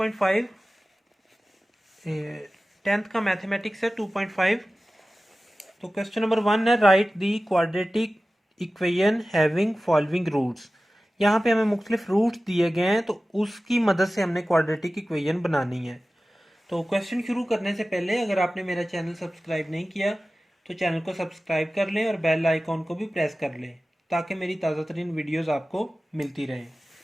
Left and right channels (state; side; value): normal; both; correlation 0.96